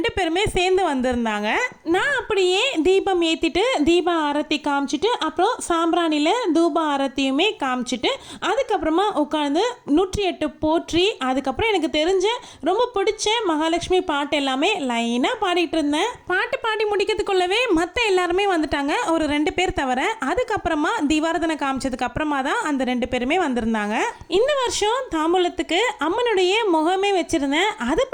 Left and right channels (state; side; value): identical; both; correlation 1.00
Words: பேருமே சேர்ந்து வந்திருந்தாங்க. நான் அப்படியே தீபம் ஏற்றிட்டு தீப ஆரத்தி காமிச்சிட்டு அப்புறம் சாம்பிராணியில் தூப ஆரத்தியுமே காமிச்சிட்டு அதுக்கப்புறமா உட்காந்து 108 போற்றி அதுக்கப்புறம் எனக்கு தெரிஞ்ச ரொம்ப பிடிச்ச மகாலட்சுமி பாட்டு எல்லாமே லைனாக பாடிட்டு இருந்தேன். பாட்டு பாடி முடிக்கிறதுக்குள்ளவே மற்ற எல்லாருமே வந்துட்டாங்க, ஒரு 2 பேர் தவிர. அதுக்கப்புறமா தீபாரதனை காமிச்சதுக்கு அப்புறமா தான் அந்த 2 பேருமே வந்து இருந்தாங்க. இந்த வருஷம் தாம்பூலத்துக்கு அம்மனுடைய முகமே வச்சிருந்தேன். அது